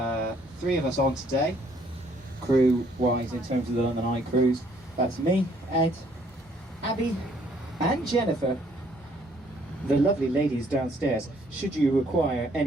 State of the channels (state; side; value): normal; both; correlation 0.64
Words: 3 of us on today, crew-wise, in terms of the London Eye cruise. That's me, Ed, Abby, and Jennifer. The lovely ladies downstairs. Should you require